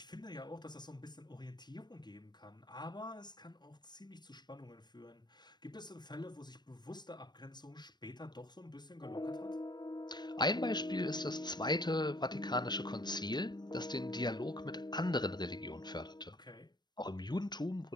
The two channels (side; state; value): right; late; 0.21 ms